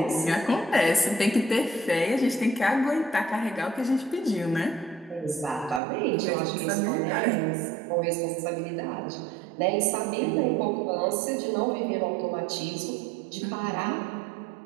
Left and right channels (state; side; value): drops out; left; at 5.8 s